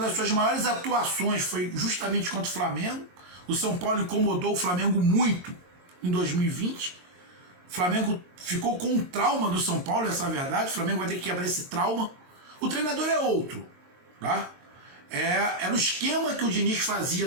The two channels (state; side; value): late; left; 22 ms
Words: suas maiores atuações foi justamente contra o Flamengo. O São Paulo incomodou o Flamengo muito em 2020. O Flamengo ficou com um trauma do São Paulo, essa é a verdade. O Flamengo vai ter que quebrar esse trauma. O treinador é outro, tá? Era o esquema que o Diniz fazia